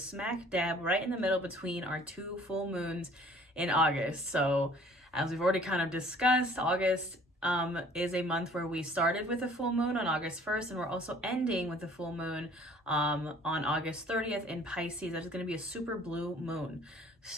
smack dab right in the middle between our two full moons in August. So as we've already kind of discussed, August is a month where we started with a full moon on August 1st, and we're also ending with a full moon on August 30th in Pisces. That is going to be a super blue moon.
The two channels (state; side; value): normal; both; correlation 0.53